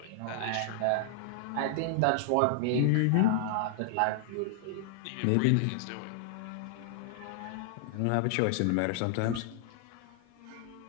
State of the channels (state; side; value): different; both; correlation -0.01